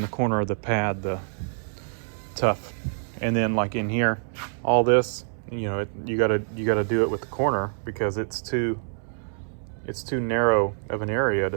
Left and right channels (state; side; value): silent; left; 61 dB below the other